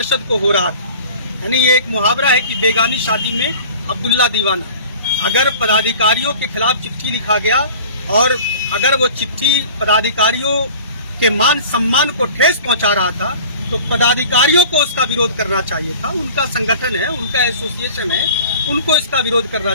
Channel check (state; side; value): inverted; both; correlation -0.43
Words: को हो रहा था। यानी ये एक मुहावरा है कि बेगानी शादी में अब्दुल्ला दीवाना। अगर पदाधिकारियों के खिलाफ चिट्ठी लिखा गया और अगर वो चिट्ठी पदाधिकारियों के मान सम्मान को ठेस पहुंचा रहा था, तो पदाधिकारियों को उसका विरोध करना चाहिए था। उनका संगठन है, उनका एसोसिएशन है, उनको इसका विरोध करना